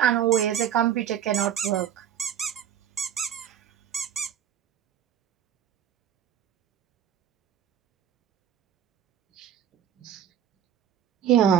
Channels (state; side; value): quieter; left; 9.7 dB